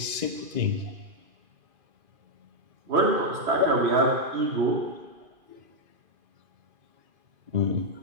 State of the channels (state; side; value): late; left; 2.5 ms